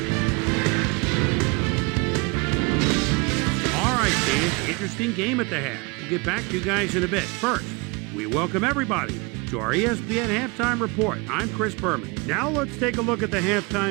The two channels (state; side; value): quieter; left; 28.9 dB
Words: All right, Dan, interesting game at the half. We'll get back to you guys in a bit. First, we welcome everybody to our ESPN halftime report. I'm Chris Berman. Now let's take a look at the